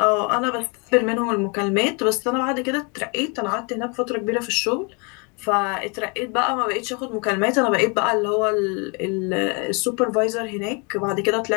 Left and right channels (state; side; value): quieter; right; 33.4 dB